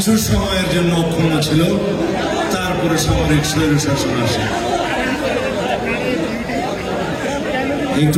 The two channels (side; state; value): both; identical; correlation 1.00